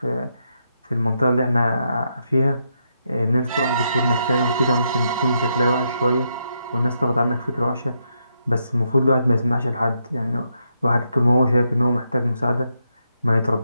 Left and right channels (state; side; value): inverted; both; correlation -0.80